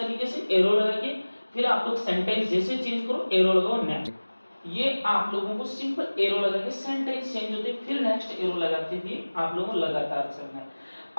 से एरो लगा के, फिर आप लोग सेंटेंस जैसे चेंज करो एरो लगाओ नेक्स्ट। ये आप लोगों को सिंपल एरो लगा के सेंटेंस चेंज होते फिर नेक्स्ट एरो लगाते हुए आप लोगों को लगातार चलना है।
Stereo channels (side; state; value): both; inverted; correlation -1.00